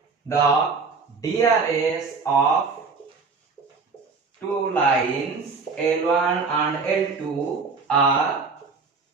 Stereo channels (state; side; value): quieter; left; 4.7 dB